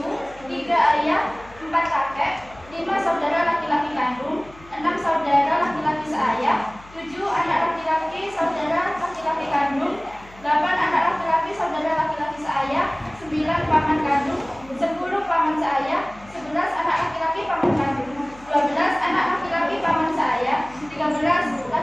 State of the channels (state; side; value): noise; left; hum, 23 dB below the sound